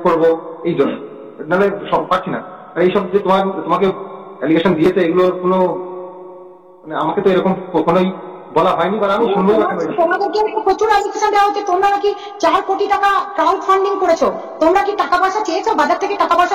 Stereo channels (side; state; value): both; identical; correlation 1.00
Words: করবো এই জন্য, নাহলে সব পাচ্ছি না। আর এইসব যে তোমাকে অ্যালিগেশন দিয়েছে এগুলোর কোনো মানে আমাকে তো এরকম কখনোই বলা হয়নি, বা আমি শুনবো। তোমাদেরকে প্রচুর অ্যালিগেশন দেওয়া হচ্ছে, তোমরা নাকি 4 কোটি টাকা ক্রাউড ফান্ডিং করেছো। তোমরা কি টাকা পয়সা চেয়েছো? বাজার থেকে টাকা পয়সা